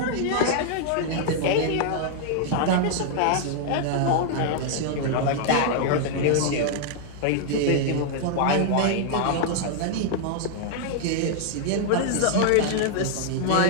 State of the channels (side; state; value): both; different; correlation -0.01